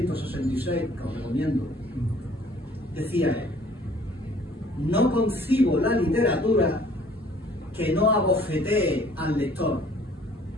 que os recomiendo, decía él: no concibo la literatura que no abofetee al lector,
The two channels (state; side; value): normal; both; correlation 0.56